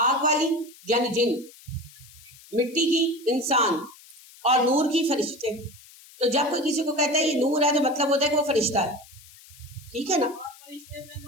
آگ والی یعنی جن، مٹی کی انسان، اور نور کی فرشتے. تو جب کوئی کسی کو کہتا ہے یہ نور ہے تو مطلب ہوتا ہے کہ وہ فرشتہ ہے. ٹھیک ہے نا؟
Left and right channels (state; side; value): noise; left; hiss, 22 dB below the sound